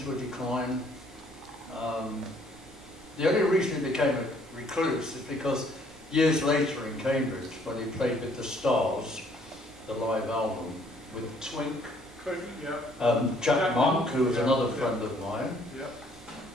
a decline. The only reason he became a recluse is because years later in Cambridge, when he played with the Stars, the live album, with Twink, Jack Monk, who was another friend of mine,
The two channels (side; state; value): right; noise; rumble, 23 dB below the sound